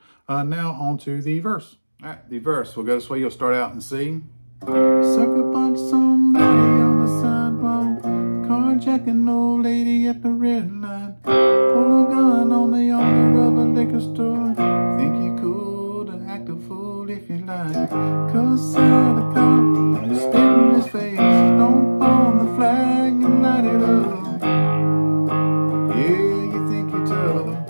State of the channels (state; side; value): inverted; both; correlation -1.00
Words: Now on to the verse. All right, the verse will go this way. You'll start out and C. Sucker punch somebody on the sidewalk, carjack Carjacking old lady at the red light. Pull a gun on the owner of a liquor store. Think you cool to act a fool if you like. Cuss out a cop, spit in his face. Stomp on the flag and light it up. Yeah, you think you're tough.